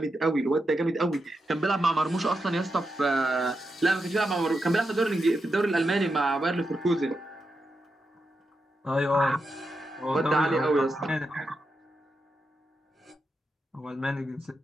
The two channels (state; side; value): normal; both; correlation 0.86